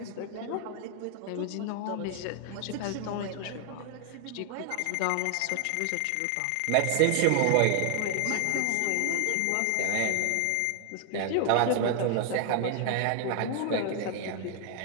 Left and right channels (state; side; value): different; both; correlation 0.00